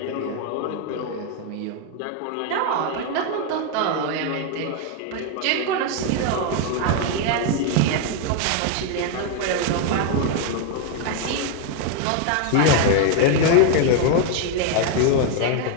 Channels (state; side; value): different; both; correlation 0.01